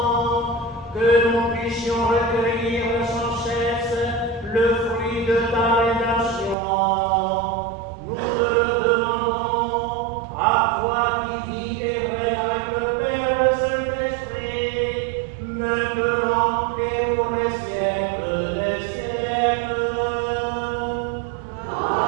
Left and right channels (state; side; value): drops out; left; at 6.6 s